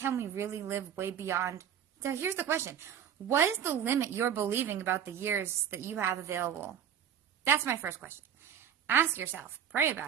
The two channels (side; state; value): left; quieter; 8.8 dB